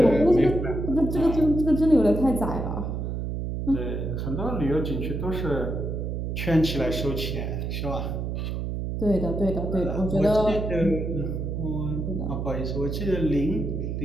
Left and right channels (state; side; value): noise; right; hum, 3 dB below the sound